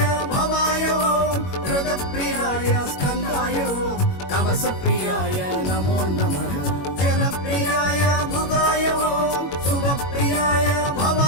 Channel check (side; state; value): right; late; 21 ms